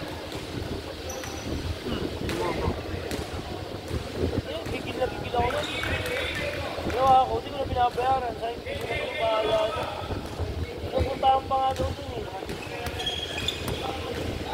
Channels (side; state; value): both; identical; correlation 1.00